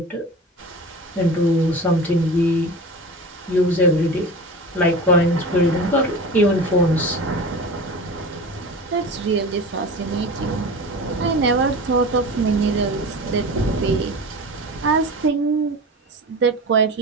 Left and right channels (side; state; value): both; normal; correlation 0.32